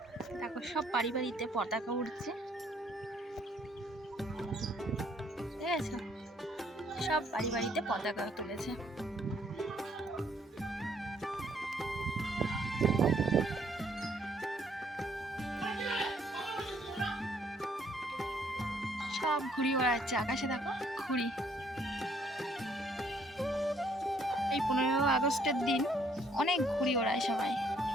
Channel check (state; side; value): normal; both; correlation 0.66